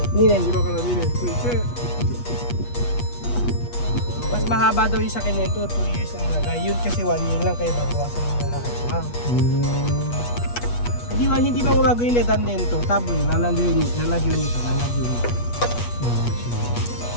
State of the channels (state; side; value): late; right; 8.3 ms